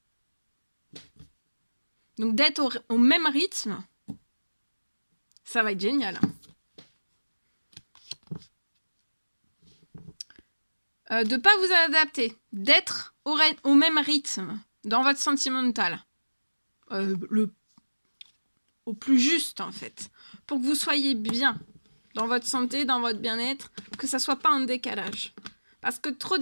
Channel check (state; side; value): inverted; both; correlation -1.00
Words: Donc d'être au même rythme, ça va être génial. De ne pas vous adapter, d'être au même rythme dans votre sentimental. Au plus juste en fait, pour que vous soyez bien dans votre santé, dans votre bien-être, que ça soit pas un décalage. Parce que trop